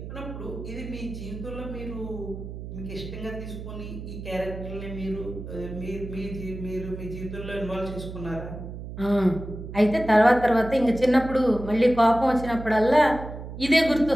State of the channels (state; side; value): noise; right; hum, 10 dB below the sound